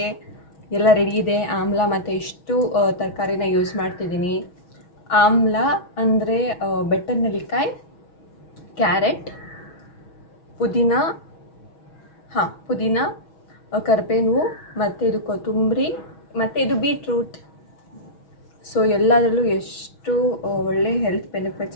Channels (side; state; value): right; late; 6.2 ms